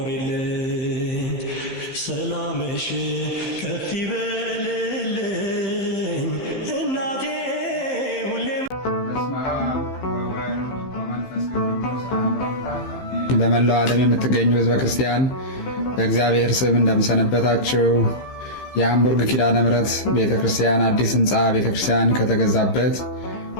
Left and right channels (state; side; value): late; right; 15 ms